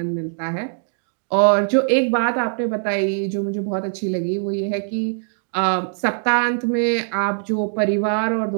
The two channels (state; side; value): silent; left; digital silence